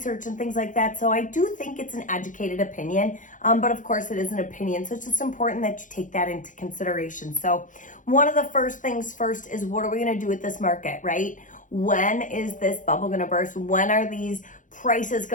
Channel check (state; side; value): late; right; 0.37 ms